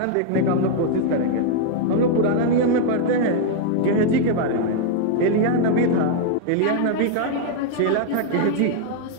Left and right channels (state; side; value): different; both; correlation 0.00